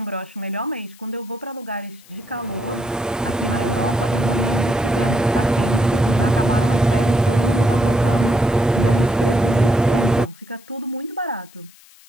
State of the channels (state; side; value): noise; left; hiss, 26 dB below the sound